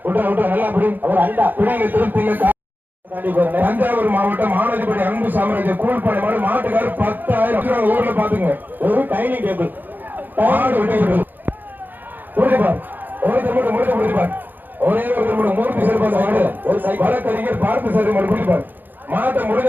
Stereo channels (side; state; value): left; late; 0.088 ms